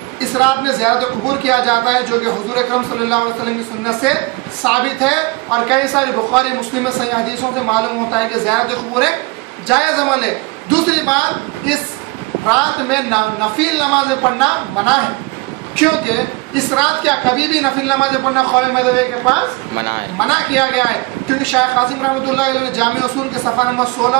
اس رات میں زیارت قبور کیا جاتا ہے جو کہ حضور اکرم صلی اللہ علیہ وسلم کی سنت سے ثابت ہے اور کئی ساری بخاری مسلم میں صحیح حدیثوں سے معلوم ہوتا ہے کہ زیارت قبور ایک جائز عمل ہے. دوسری بات، اس رات میں نفل نمازیں پڑھنا منع ہے کیونکہ اس رات کیا کبھی بھی نفل نمازیں پڑھنا قول مذہبی کے پاس منع کیا گیا ہے. کیونکہ شیخ قاسم رحمۃ اللہ علیہ نے جامع اصول کے صفحہ نمبر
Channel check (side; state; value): left; quieter; 24.6 dB